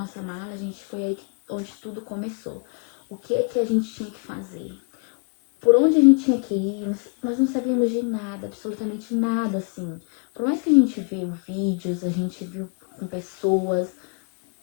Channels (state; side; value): quieter; right; 37.6 dB